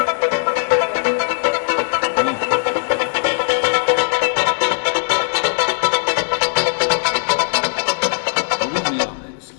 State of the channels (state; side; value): silent; right; digital silence